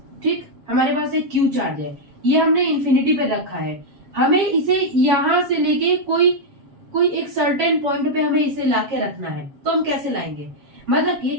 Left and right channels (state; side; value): late; left; 7.3 ms